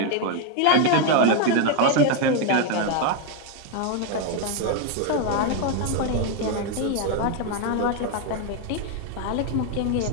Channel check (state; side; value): different; both; correlation 0.01